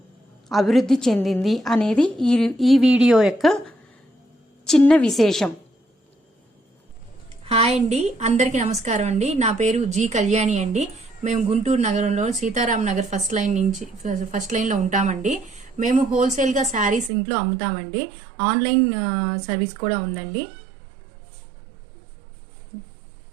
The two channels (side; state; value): left; drops out; at 17.1 s